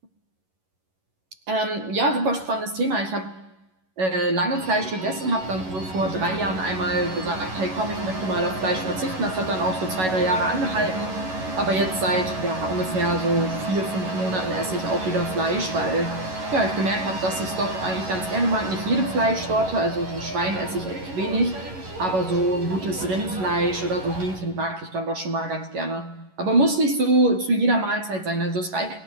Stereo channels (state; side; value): late; left; 11 ms